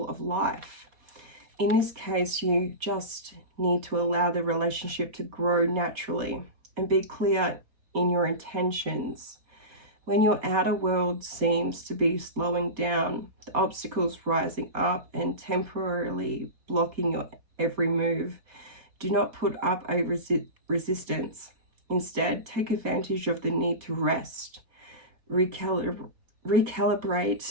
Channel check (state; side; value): late; left; 4.2 ms